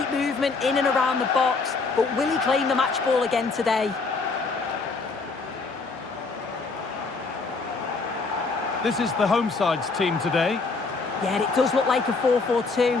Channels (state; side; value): quieter; right; 4.2 dB